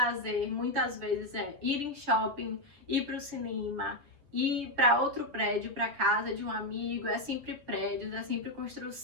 muitas vezes é ir em shopping, ir para o cinema, ir para outro prédio, para casa de um amigo. É sempre prédios, é sempre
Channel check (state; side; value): late; left; 6.8 ms